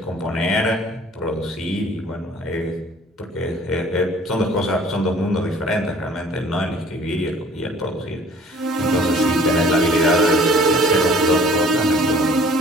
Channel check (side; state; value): both; normal; correlation 0.53